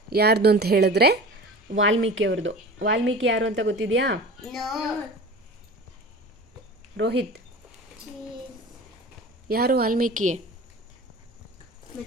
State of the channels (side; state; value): both; normal; correlation 0.36